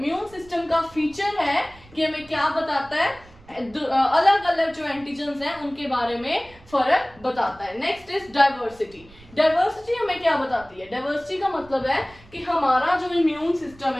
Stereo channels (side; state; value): right; noise; rumble, 24 dB below the sound